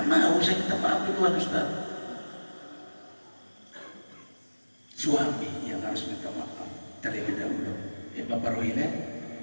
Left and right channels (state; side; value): inverted; both; correlation -1.00